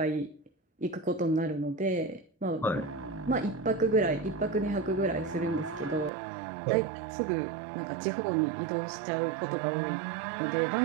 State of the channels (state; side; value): drops out; left; at 6.1 s